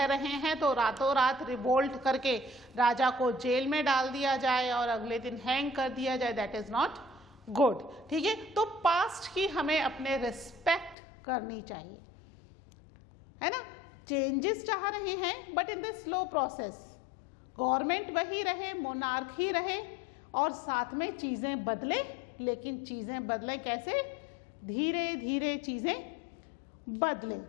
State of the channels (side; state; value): right; drops out; at 11.0 s